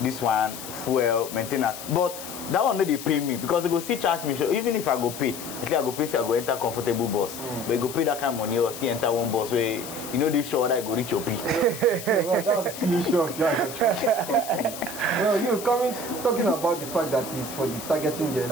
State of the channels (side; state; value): left; noise; hiss, 11 dB below the sound